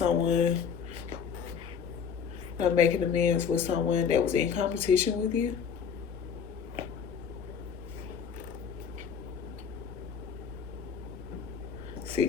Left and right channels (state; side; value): quieter; right; 6.9 dB